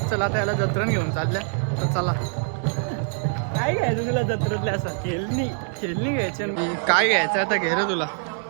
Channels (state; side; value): silent; left; 57 dB below the other